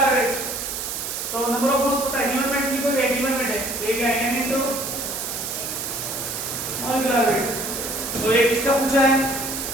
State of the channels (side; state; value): right; noise; hiss, 4 dB below the sound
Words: weight. तो नंबर ऑफ मोल्स पता है. Given weight लिखो ये given weight है. तो ये क्या है? N into molecular weight. तो ये किसका पूछा है?